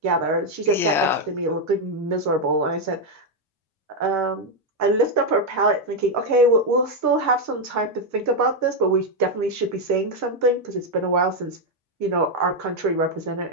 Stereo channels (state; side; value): normal; both; correlation 0.03